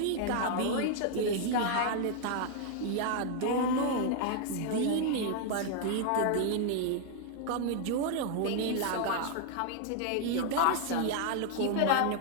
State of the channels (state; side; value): different; both; correlation 0.00